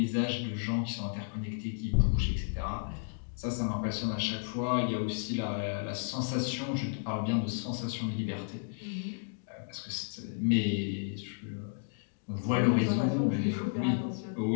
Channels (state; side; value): silent; right; digital silence